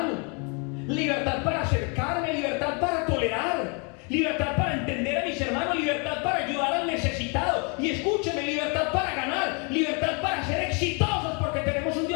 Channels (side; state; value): right; quieter; 34.7 dB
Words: Libertad para acercarme. Libertad para tolerar. Libertad para entender a mis hermanos. Libertad para ayudar al necesitado. Y escúcheme, libertad para ganar. Libertad para ser exitosos porque tenemos un